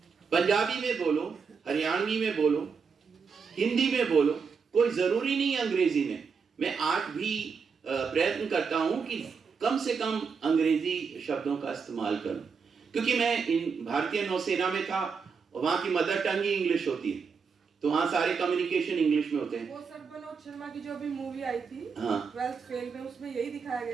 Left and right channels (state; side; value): quieter; left; 5.7 dB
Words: पंजाबी में बोलो, हरियाणवी में बोलो, हिंदी में बोलो, कोई जरूरी नहीं अंग्रेजी में। मैं आज भी प्रयत्न करता हूं कि कम से कम अंग्रेजी शब्दों का इस्तेमाल करूं, क्योंकि मैं भारतीय नौसेना में था, वहां की मदर टंग ही इंग्लिश होती है, तो वहाँ सारे कम्युनिकेशन इंग्लिश में होते हैं। वो सर मनोज शर्मा की जो अभी मूवी आई थी, हाँ। 12th फेल में, उसमें यही दिखाया